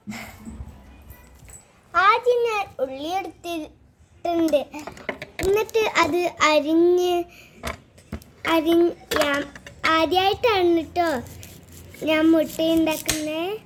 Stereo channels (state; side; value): identical; both; correlation 1.00